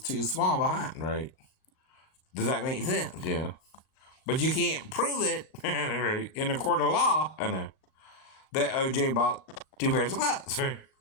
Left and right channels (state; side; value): late; right; 38 ms